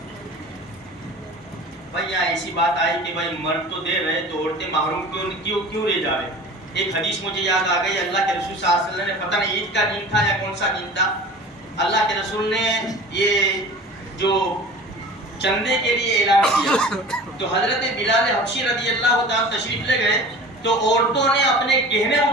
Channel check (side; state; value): both; normal; correlation 0.40